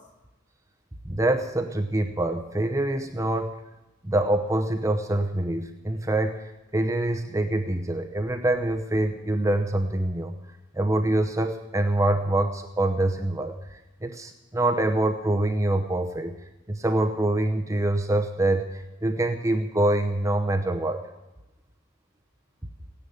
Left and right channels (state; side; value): normal; both; correlation 0.78